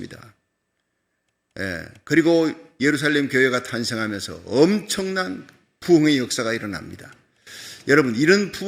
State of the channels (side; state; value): both; identical; correlation 1.00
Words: 그리고 예루살렘 교회가 탄생하면서 엄청난 부흥의 역사가 일어납니다. 여러분, 이런